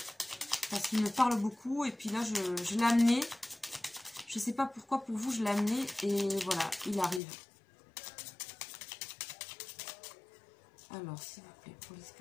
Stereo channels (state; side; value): drops out; right; at 7.2 s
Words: Parce qu'il me parle beaucoup et puis là, je l'ai amené. Je ne sais pas pourquoi pour vous je l'ai amené et voilà, il arrive. Alors, s'il vous plaît, pour les